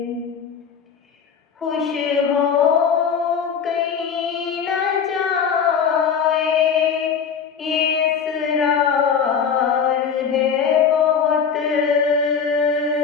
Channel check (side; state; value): right; quieter; 6.8 dB